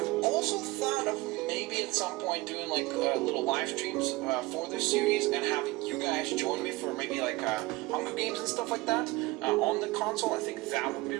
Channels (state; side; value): quieter; left; 21.0 dB